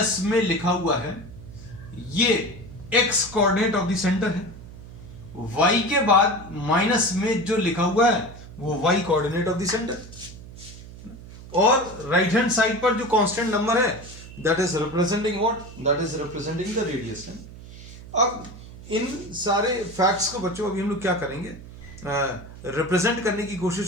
में लिखा हुआ है ये x coordinate of the centre है. y के बाद माइनस में जो लिखा हुआ है वो y coordinate of the centre. और राइट हैंड साइड पर जो कांस्टेंट नंबर है that is representing what, that is representing the radius. अब इन सारे फैक्ट्स को बच्चों अभी हम लोग क्या करेंगे, रिप्रेजेंट करने की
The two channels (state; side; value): noise; right; hum, 16 dB below the sound